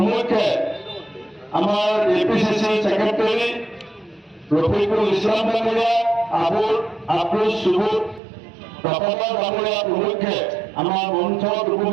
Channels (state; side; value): drops out; left; at 8.2 s